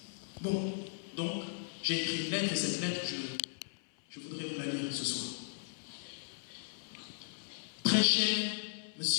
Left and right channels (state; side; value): silent; right; 53 dB below the other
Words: Bon, donc, j'ai écrit une lettre et cette lettre, je voudrais vous la lire ce soir. Très cher